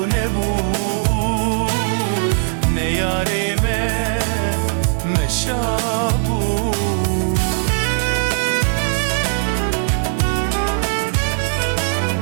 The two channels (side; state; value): left; silent; 60 dB below the other